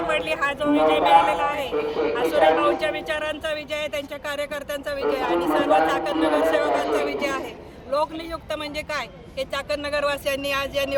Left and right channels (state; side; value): identical; both; correlation 1.00